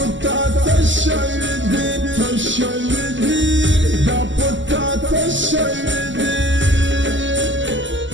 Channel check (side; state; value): left; late; 0.54 ms